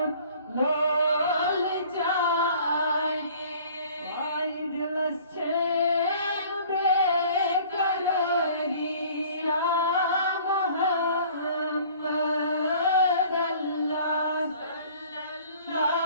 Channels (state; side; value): inverted; both; correlation -0.50